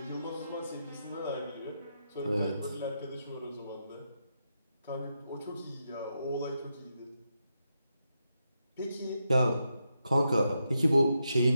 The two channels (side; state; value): both; inverted; correlation -0.84